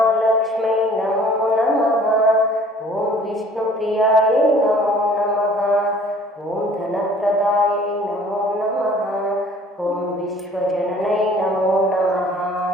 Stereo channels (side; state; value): both; normal; correlation 0.53